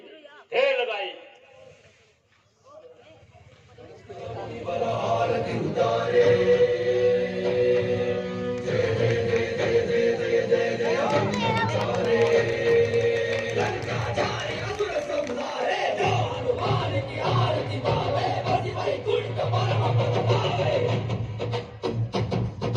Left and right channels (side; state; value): both; identical; correlation 1.00